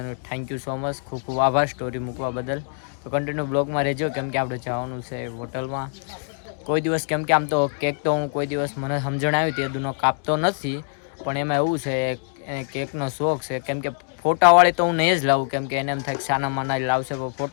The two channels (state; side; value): silent; right; digital silence